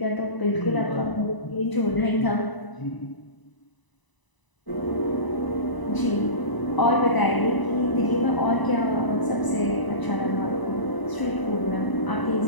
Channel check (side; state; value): right; late; 1.0 ms